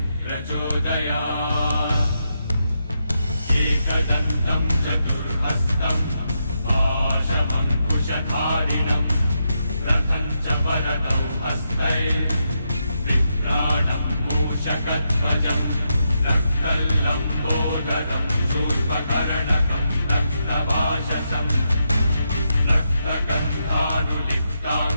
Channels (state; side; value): inverted; both; correlation -0.83